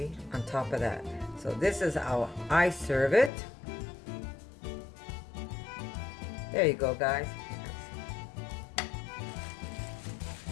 on top of that. So this is how I serve it. There you go, guys.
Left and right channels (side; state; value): right; drops out; at 3.3 s